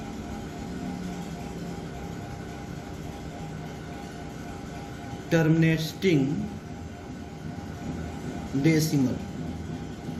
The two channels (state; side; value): identical; both; correlation 1.00